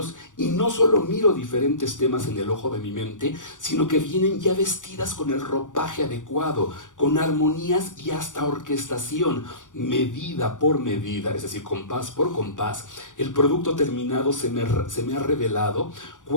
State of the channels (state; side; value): late; right; 0.87 ms